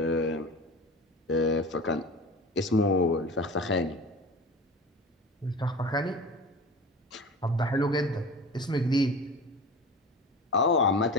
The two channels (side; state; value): both; normal; correlation 0.34